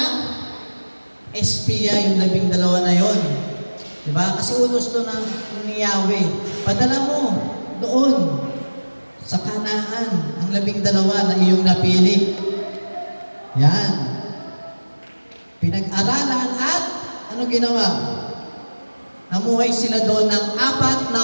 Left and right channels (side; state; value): both; inverted; correlation -1.00